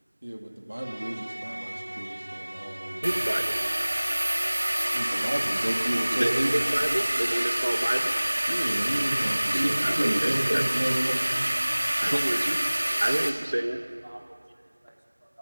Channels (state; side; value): inverted; both; correlation -1.00